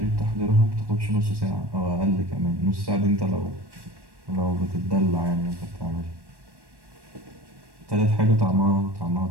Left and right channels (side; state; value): left; late; 1.1 ms